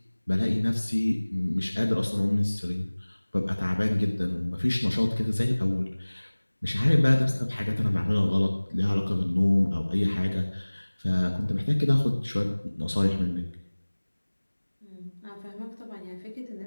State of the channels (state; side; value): inverted; both; correlation -1.00